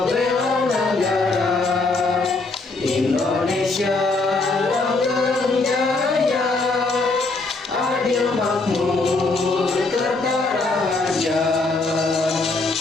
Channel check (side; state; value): right; quieter; 3.5 dB